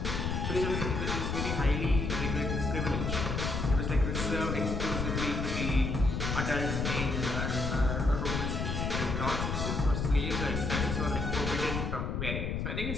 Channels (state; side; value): noise; left; rumble, 1 dB below the sound